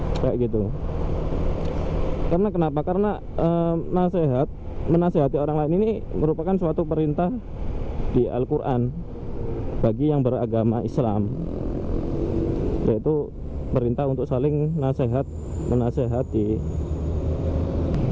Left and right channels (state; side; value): identical; both; correlation 1.00